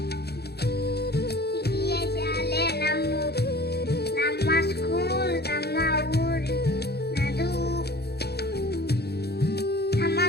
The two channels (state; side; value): late; right; 0.47 ms